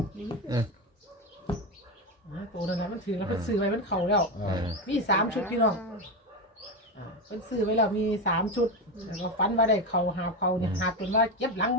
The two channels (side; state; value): both; normal; correlation 0.14